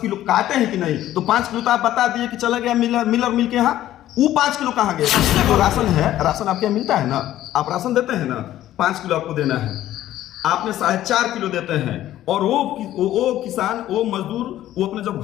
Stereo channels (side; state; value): right; quieter; 13.3 dB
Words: किलो काटे हैं कि नहीं, तो 5 किलो तो आप बता दिए कि चला गया मिलर मिल के यहाँ, वो 5 किलो कहाँ गया? जो राशन है, राशन आपके यहाँ मिलता है ना, आप राशन देते हैं ना, 5 किलो आपको देना है, आपने 4.5 किलो देते हैं, और वो किसान, वो मजदूर, वो अपने जब